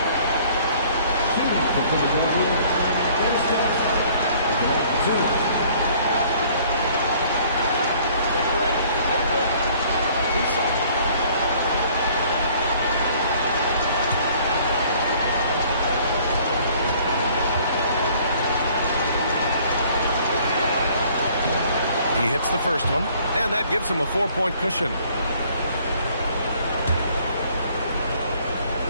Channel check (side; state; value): both; inverted; correlation -0.57